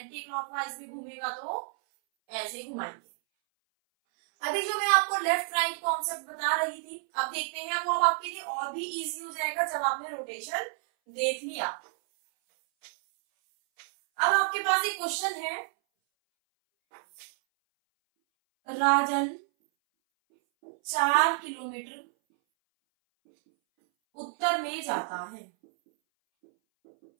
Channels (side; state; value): left; silent; 58 dB below the other